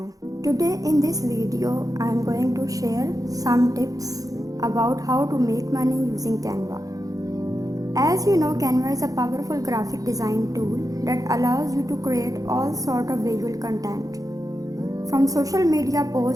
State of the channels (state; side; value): late; left; 0.17 ms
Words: Today in this video I am going to share some tips about how to make money using Canva. As you know, Canva is a powerful graphic design tool that allows you to create all sort of visual content, from social media